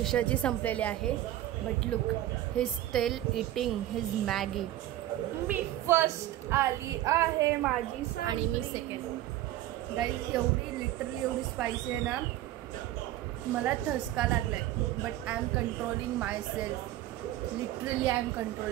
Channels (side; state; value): left; quieter; 14.2 dB